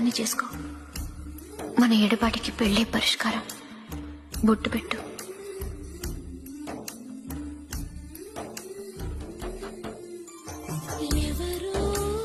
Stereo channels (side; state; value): both; identical; correlation 1.00